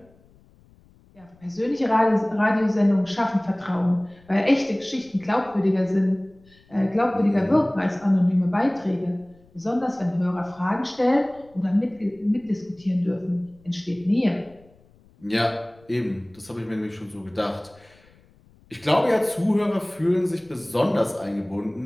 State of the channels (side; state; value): left; noise; rumble, 29 dB below the sound